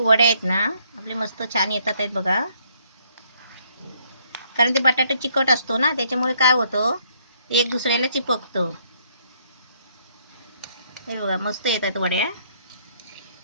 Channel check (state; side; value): inverted; both; correlation -0.68